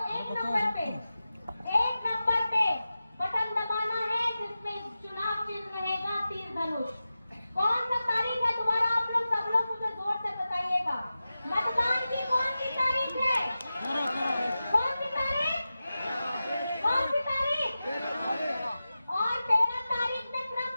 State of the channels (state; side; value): inverted; both; correlation -0.94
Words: एक नंबर पे बटन दबाना है जिसमें चुनाव चिन्ह रहेगा तीर धनुष। कौन सा तारीख है दोबारा आप लोग सब लोग मुझे जोर से बताइएगा। मतदान की कौन सी तारीख है? कौन सी तारीख? कौन सी तारीख? और 13 तारीख में क्रम